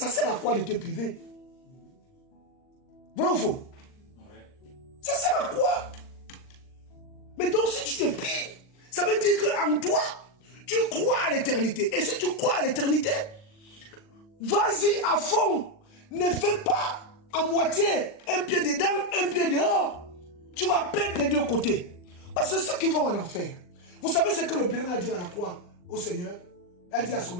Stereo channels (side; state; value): right; late; 39 ms